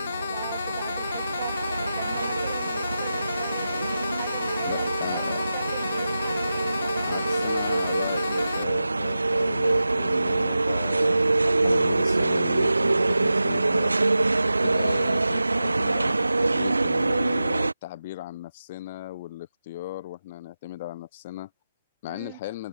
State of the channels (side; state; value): both; inverted; correlation -0.92